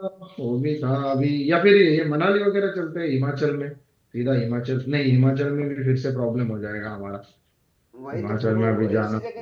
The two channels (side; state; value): both; identical; correlation 1.00